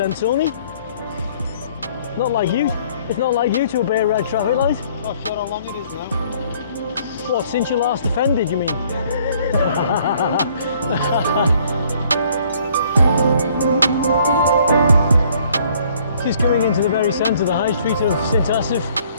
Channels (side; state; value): both; inverted; correlation -0.60